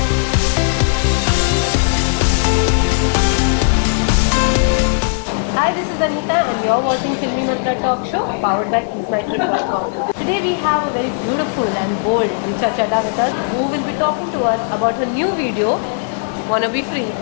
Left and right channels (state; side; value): silent; right; digital silence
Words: Hi, this is Anita and you're watching Filmy Mantra Talk Show powered by EaseMyTrip.com. Today we have a very beautiful and bold Richa Chadda with us who will be talking to us about her new video, Wanna Be Free.